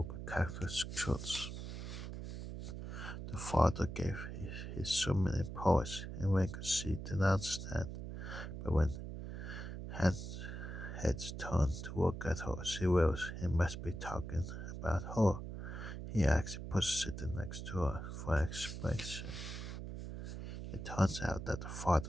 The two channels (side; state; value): right; noise; hum, 7 dB below the sound